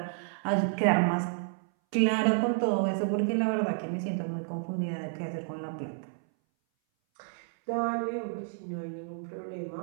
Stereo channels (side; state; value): left; silent; 57 dB below the other